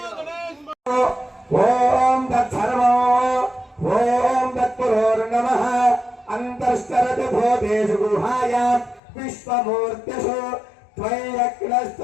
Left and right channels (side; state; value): right; drops out; at 9.0 s